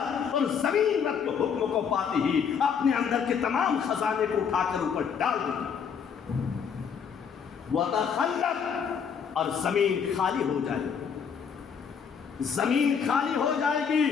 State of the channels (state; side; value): quieter; right; 6.9 dB